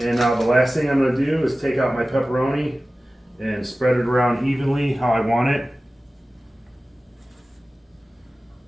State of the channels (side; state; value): both; normal; correlation 0.96